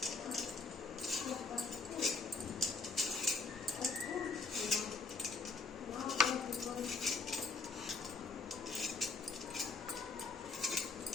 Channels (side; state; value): right; quieter; 4.3 dB